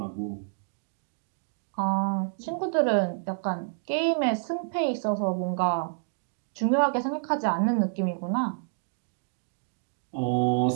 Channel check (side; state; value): left; silent; digital silence